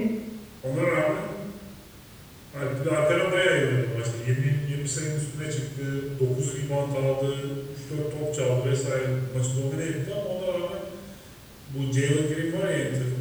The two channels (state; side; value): identical; both; correlation 1.00